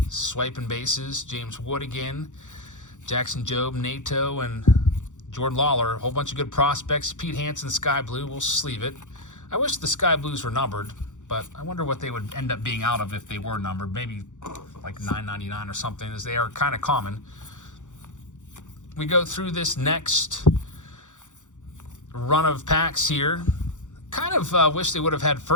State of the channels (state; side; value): late; right; 0.86 ms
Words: Swiping bases. James Wood again. Jackson Jobe, Nato, and Jordan Lawler. A whole bunch of good prospects. Pete Hansen, Sky Blue. We'll sleeve it. I wish the Sky Blues were numbered, but I wonder what they would end up being out of if they were numbered. Maybe like $9.99 or something, as they are kind of common. We go through this next run of packs here. Kind of wish they would have had